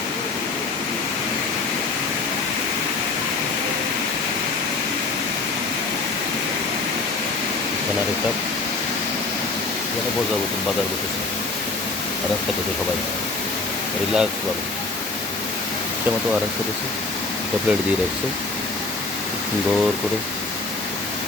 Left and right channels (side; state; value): right; quieter; 3.7 dB